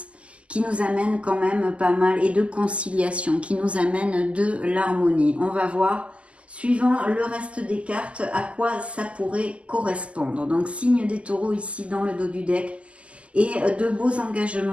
qui nous amène quand même pas mal, et de conciliation, qui nous amène de l'harmonie. On va voir, suivant le reste des cartes, à quoi ça pourrait correspondre. Donc, signe des taureaux ici dans le dos du deck, et de beaux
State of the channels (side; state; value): left; late; 0.058 ms